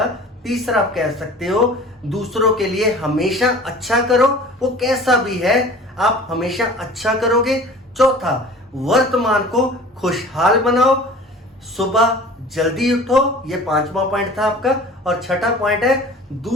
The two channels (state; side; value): normal; both; correlation 0.43